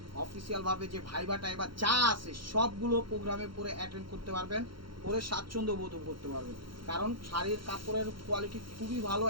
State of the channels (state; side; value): late; left; 0.73 ms